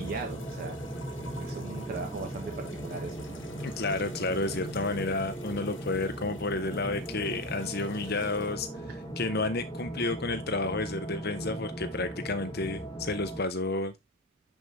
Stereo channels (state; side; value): normal; both; correlation 0.19